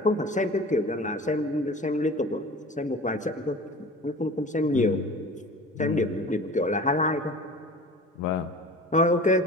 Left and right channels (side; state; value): both; normal; correlation 0.39